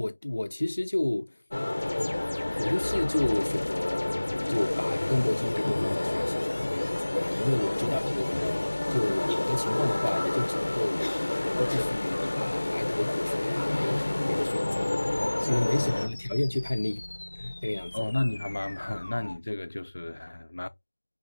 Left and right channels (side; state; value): both; inverted; correlation -1.00